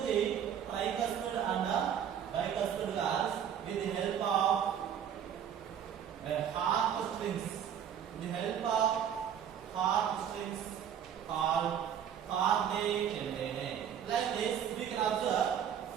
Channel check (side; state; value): left; quieter; 8.9 dB